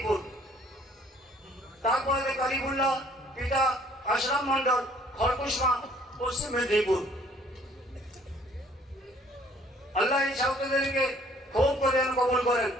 তারপরে কারিবুল্লাহ, পিতা আশরাফ মন্ডল, খড়কুশমা, পশ্চিম মেদিনীপুর। আল্লাহ এই ছাত্রদেরকে খুব করে কবুল করেন।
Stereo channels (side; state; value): both; normal; correlation 0.59